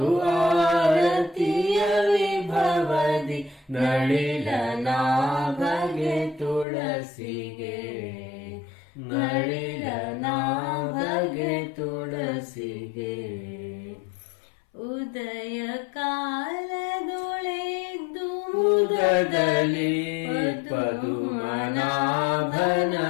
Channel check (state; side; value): drops out; right; at 6.7 s